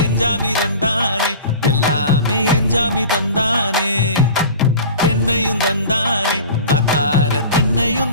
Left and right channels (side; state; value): both; inverted; correlation -0.39